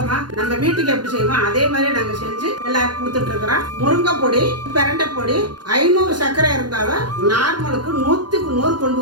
நம்ம வீட்டுக்கு எப்படி செய்வோம் அதே மாதிரி நாங்க செஞ்சு எல்லாருக்கும் கொடுத்துட்டு இருக்கிறோம். முருங்கை பொடி, பிரண்டை பொடி 500 சர்க்கரை இருந்தாலும் நார்மலுக்கு 100க்கு 100 கொண்டு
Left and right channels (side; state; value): left; late; 0.71 ms